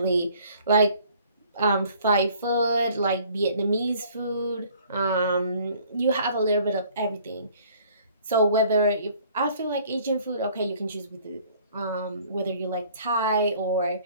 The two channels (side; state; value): both; inverted; correlation -0.56